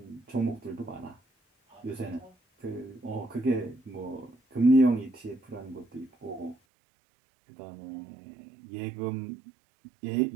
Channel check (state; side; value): drops out; left; at 6.6 s